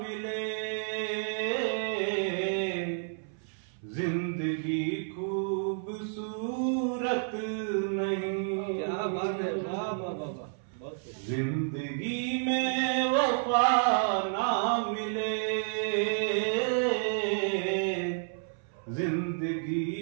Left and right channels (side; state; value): left; silent; 57 dB below the other